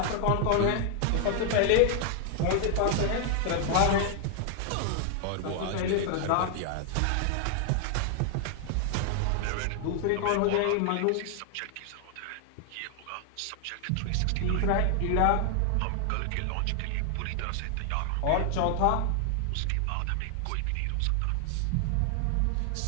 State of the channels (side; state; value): both; different; correlation 0.00